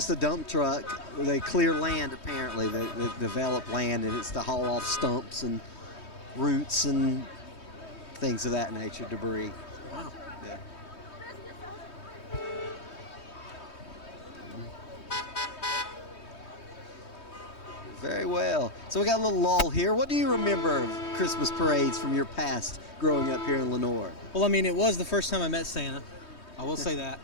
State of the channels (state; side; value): late; right; 3.2 ms